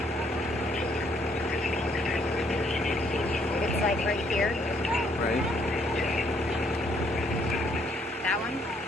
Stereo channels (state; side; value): normal; both; correlation 0.68